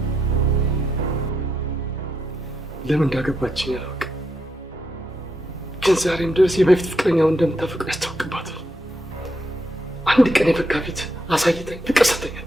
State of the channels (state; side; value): normal; both; correlation 0.81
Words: ለምን እንዳገባችኝ አላውቅም፣ ግን ዛሬም ድረስ የበፊት ፍቅረኛውን እንደምታፈቅር ያስታውቅባታል። አንድ ቀን የፈካ ፊት አሳይተኝ ፍቅር ሰተኝ